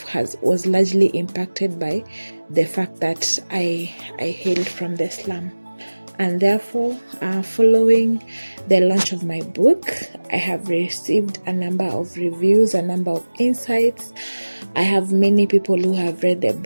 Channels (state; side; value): inverted; both; correlation -1.00